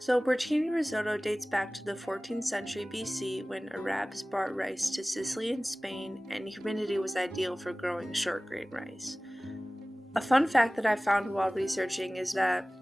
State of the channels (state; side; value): normal; both; correlation 0.98